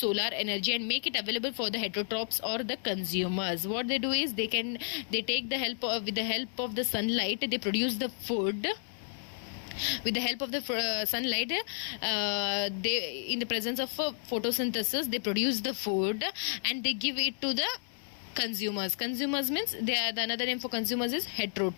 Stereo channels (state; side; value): silent; right; 57 dB below the other